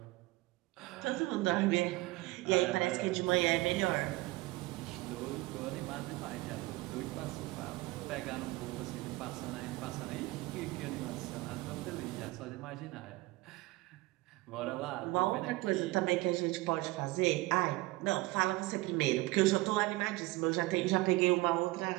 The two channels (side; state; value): left; quieter; 21.0 dB